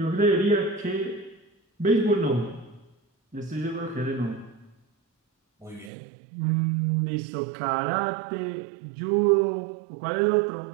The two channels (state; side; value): drops out; left; at 5.9 s